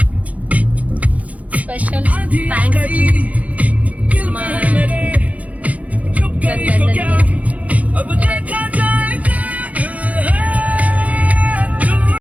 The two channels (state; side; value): late; left; 0.070 ms